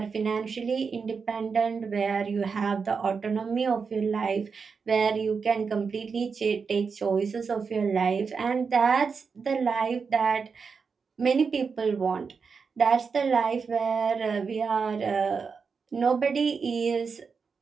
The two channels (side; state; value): left; quieter; 5.4 dB